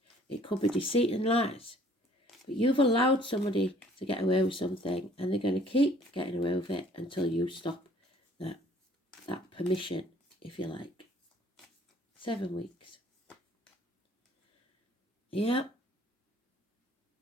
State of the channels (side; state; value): both; normal; correlation 0.57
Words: It could be deceit and lies. But you've allowed somebody to get away with something, and they're going to keep getting away with it until you stop that permission, if you like. 7 weeks. Yeah.